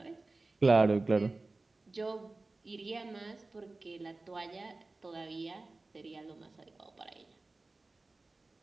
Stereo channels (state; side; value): quieter; left; 3.3 dB